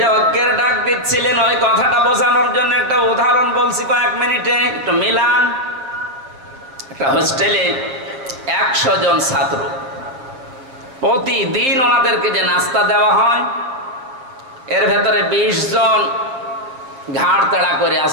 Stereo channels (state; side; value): late; left; 7.6 ms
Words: ঐক্যের ডাক দিচ্ছিলেন, ওই কথাটা বোঝানোর জন্য একটা উদাহরণ বলছি কয়েক মিনিটে, একটু মিলান। একটা হোস্টেলে 100 জন ছাত্র, প্রতিদিন ওনাদেরকে যে নাস্তা দেওয়া হয়, এর ভেতরে 20 জন ঘাড় তাড়া করে